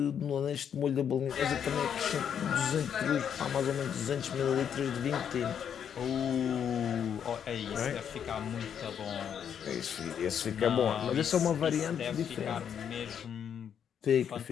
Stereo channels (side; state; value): right; quieter; 8.3 dB